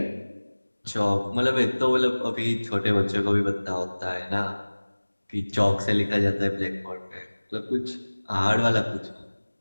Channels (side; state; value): both; inverted; correlation -1.00